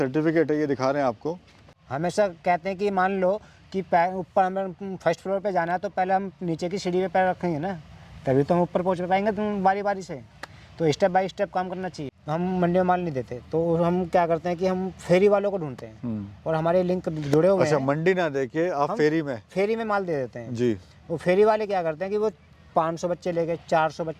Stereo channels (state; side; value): identical; both; correlation 1.00